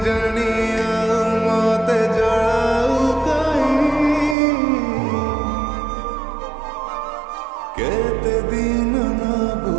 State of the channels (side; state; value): left; drops out; at 4.4 s